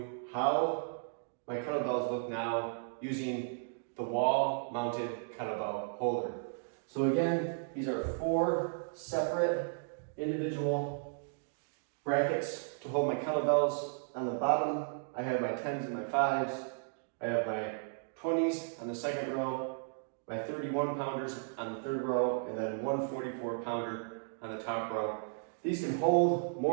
how my kettlebells look now using the wall-mounted kettlebell holder. So again, these are 4 separate individual brackets to hold my kettlebells. On the bottom, I have my 10s and my 5s. I have my 20s on the second row, my 31 pounders on the third row, and then one 44 pounder on the top row. These can hold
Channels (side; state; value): left; silent; digital silence